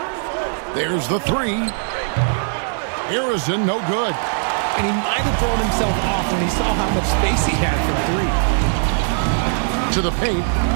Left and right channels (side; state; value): left; silent; digital silence